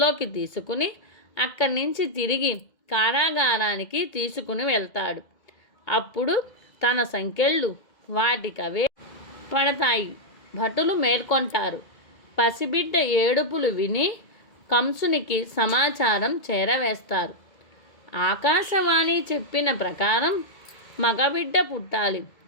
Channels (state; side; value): late; right; 2.2 ms